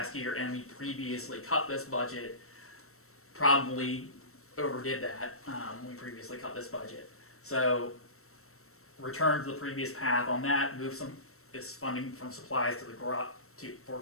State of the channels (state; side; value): late; right; 0.63 ms